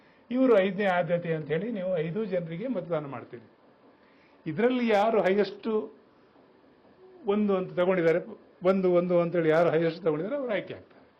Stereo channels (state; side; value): identical; both; correlation 1.00